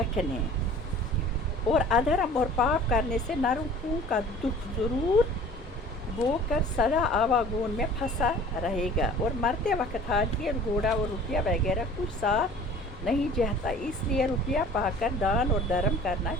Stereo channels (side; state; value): both; normal; correlation 0.46